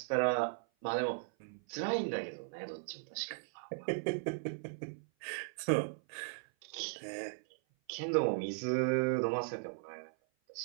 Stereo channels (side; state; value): left; silent; 53 dB below the other